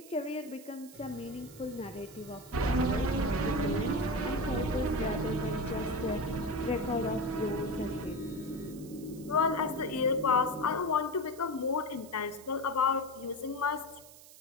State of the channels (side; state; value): right; noise; hiss, 20 dB below the sound